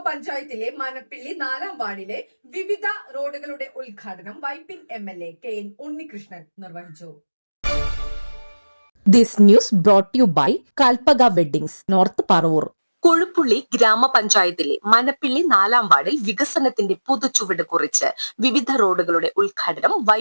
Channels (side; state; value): both; inverted; correlation -1.00